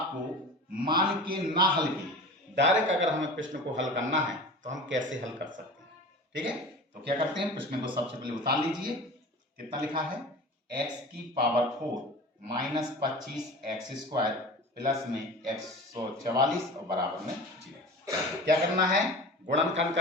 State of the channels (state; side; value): normal; both; correlation 0.36